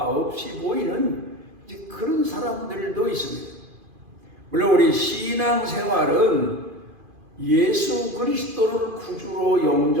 없이 보이는 이제 그런 사람들도 있습니다. 물론 우리 신앙생활은 예수 그리스도를 구주로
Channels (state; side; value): late; left; 2.5 ms